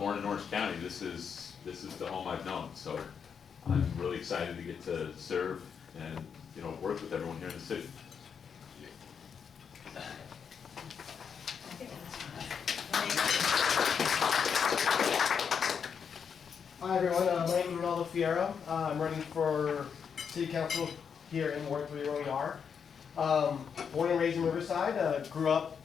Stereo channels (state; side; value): quieter; right; 6.8 dB